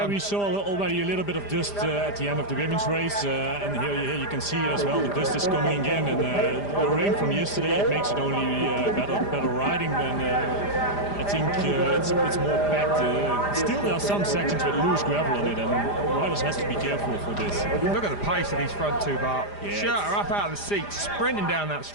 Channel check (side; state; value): right; late; 5.0 ms